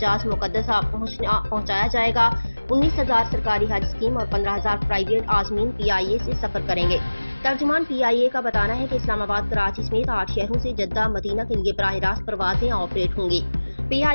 مقدسہ پہنچایا جائے گا۔ 19,000 سرکاری حج اسکیم اور 15,000 پرائیویٹ عازمین PIA سے سفر کریں گے۔ ترجمان PIA کا بتانا ہے کہ اسلام آباد، کراچی سمیت 8 شہروں سے جدہ، مدینہ کے لیے براہ راست پروازیں آپریٹ ہوں گی۔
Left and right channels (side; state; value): both; inverted; correlation -1.00